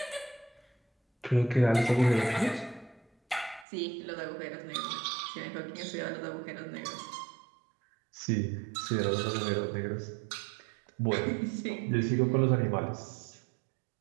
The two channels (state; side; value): drops out; left; at 3.7 s